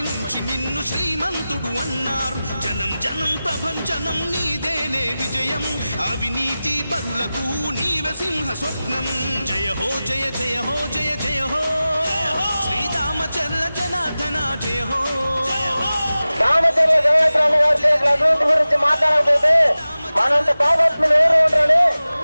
నుంచి నిన్ను శ్రీమంతుడు అన్నారు. జనం జనం ప్రభంజనం నీదేలే విజయం, అవినీతి పరులకు నీవే సింహ స్వప్నం. జయ హో జయ జయ హో జయ జయ హో శ్రీదామచర్ల జనార్దన జయ హో. దామచర్ల జనార్దన గారి అభివృద్ధి గురించి మాట్లాడకపోతే మనంత పాపత్ములు ఎవరు ఉంటారని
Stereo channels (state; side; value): inverted; both; correlation -0.96